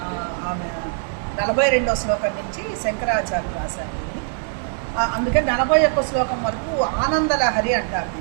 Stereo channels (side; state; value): left; silent; digital silence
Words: ఆమె 42వ శ్లోకం నుంచి శంకరాచార్యులు రాశారు. అందుకని 41 శ్లోకం వరకు ఆనందలహరి అంటారు.